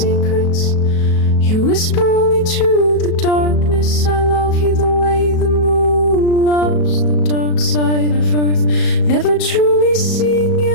You whisper only to the darkness. I love you the way the moon loves the dark side of earth. Never truly seeing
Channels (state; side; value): late; right; 37 ms